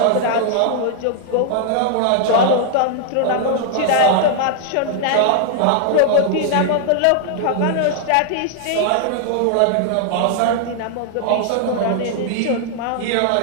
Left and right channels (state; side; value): different; both; correlation -0.01